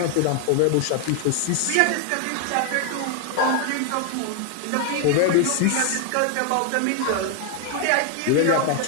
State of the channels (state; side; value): different; both; correlation 0.00